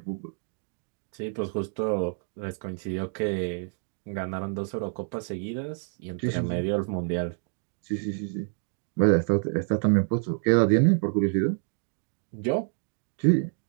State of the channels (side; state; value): left; silent; 59 dB below the other